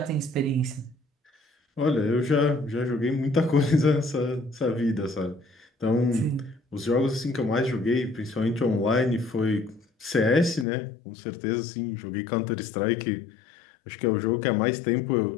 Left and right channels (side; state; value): right; drops out; at 10.7 s